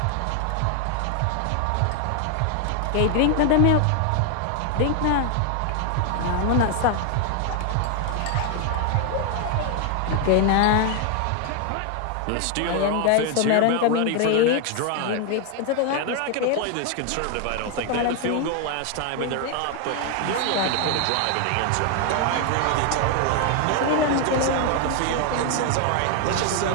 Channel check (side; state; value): both; different; correlation 0.00